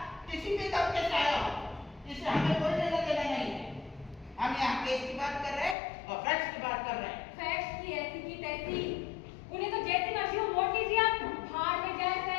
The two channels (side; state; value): right; drops out; at 5.8 s